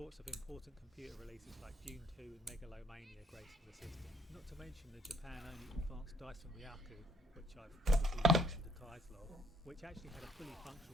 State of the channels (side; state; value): both; normal; correlation 0.66